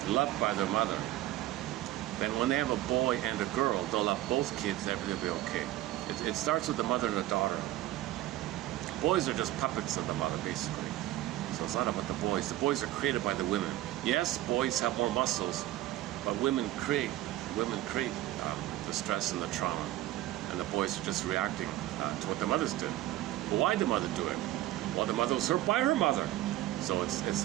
loved by their mother, then when they have a boy and a girl, they'll love both kids, everything will be okay. It starts with the mother and the daughter. Boys are just puppets of the mother, basically. So it's not about the boys. The boys are created by the women. Yes, boys have more muscles, but women create the stress and the trauma. And the boys are just reacting to what the mothers did. But why did the mother do it? Well, the mother was hurt by her mother. So it's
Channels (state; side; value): quieter; left; 15.2 dB